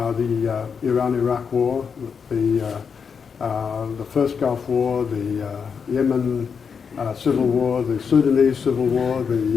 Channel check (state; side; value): quieter; right; 6.3 dB